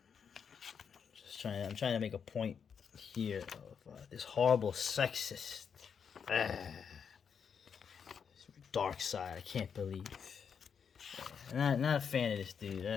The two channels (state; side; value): quieter; right; 6.9 dB